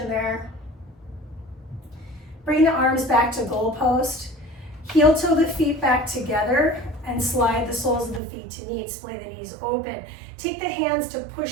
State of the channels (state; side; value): drops out; left; at 8.2 s